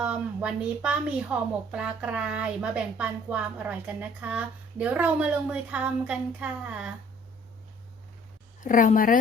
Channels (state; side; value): normal; both; correlation 0.55